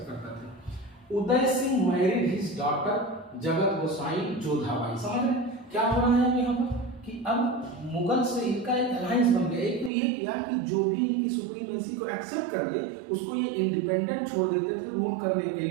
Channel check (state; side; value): drops out; left; at 9.9 s